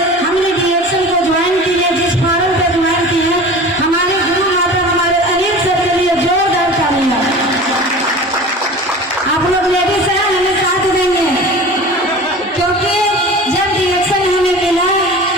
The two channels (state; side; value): normal; both; correlation 0.37